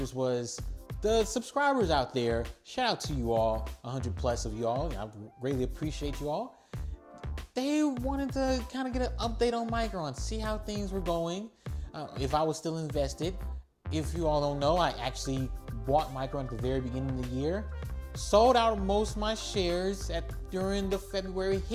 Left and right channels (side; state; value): both; identical; correlation 1.00